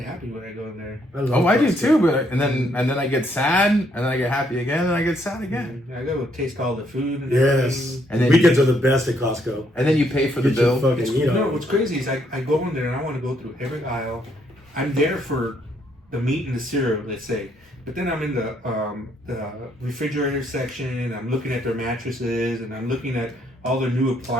when I go in there. I do too. But and then I get sad, and then I get happy again, and I get sad again. I go taste all the food. And yes, and then weekends are the best at Costco. And then you pay for the bill. What's crazy is I go in there and I want to go through every aisle. I'm there for the meat and the cereal, let's say. But then I'm in the refrigerator section, and I'm looking at their mattresses, and I'm looking at all the new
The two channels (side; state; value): both; normal; correlation 0.71